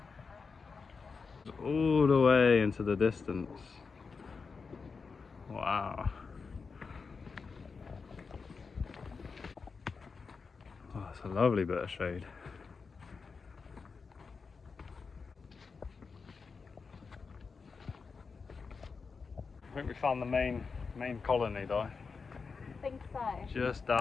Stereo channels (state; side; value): quieter; right; 5.0 dB